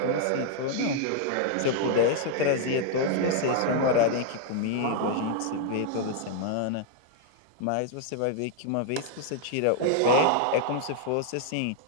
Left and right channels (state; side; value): different; both; correlation 0.00